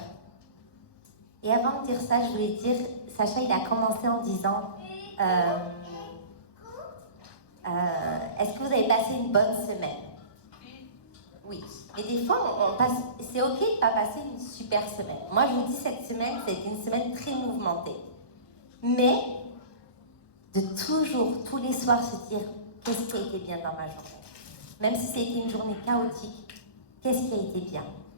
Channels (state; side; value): late; right; 1.1 ms